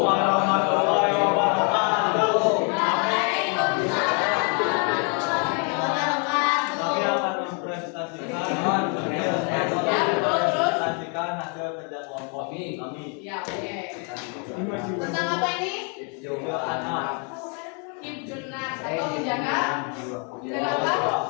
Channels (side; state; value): right; quieter; 37.8 dB